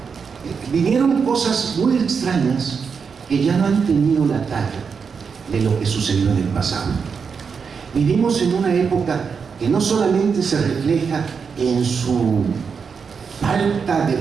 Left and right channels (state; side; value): quieter; left; 5.9 dB